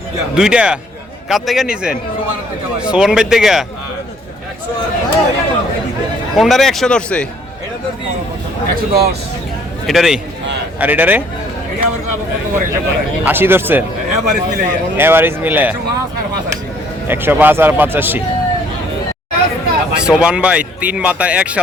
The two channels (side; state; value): both; normal; correlation 0.61